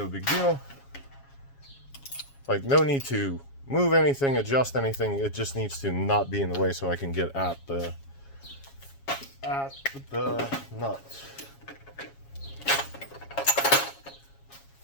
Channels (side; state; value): right; late; 7.3 ms